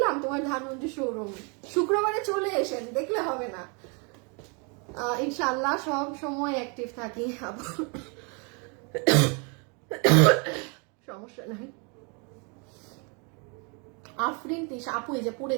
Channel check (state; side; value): quieter; left; 34.3 dB